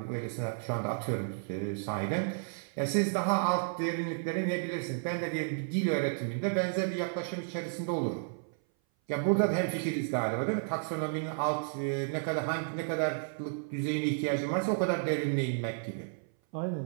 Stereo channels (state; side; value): silent; left; 56 dB below the other